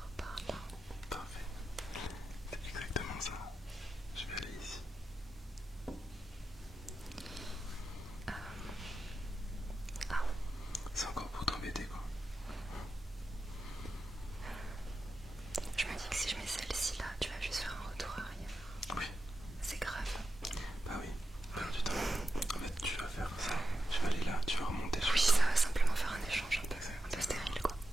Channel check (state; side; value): normal; both; correlation 0.90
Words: par là. Parfait. C'est exactement ça. Je vais aller ici. Ah, C'est encore pour t'embêter, quoi. je me dis que si je mets celle-ci là, tu vas juste faire un retour arrière. Oui. C'est grave. Bah oui. Perdre du temps. En fait,